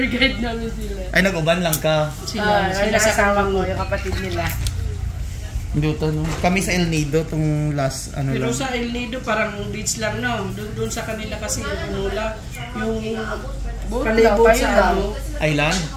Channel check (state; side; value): identical; both; correlation 1.00